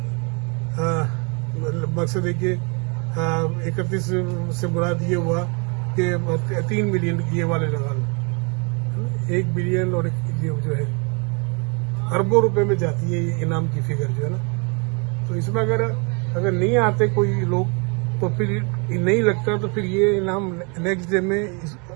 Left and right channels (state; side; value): quieter; left; 33.3 dB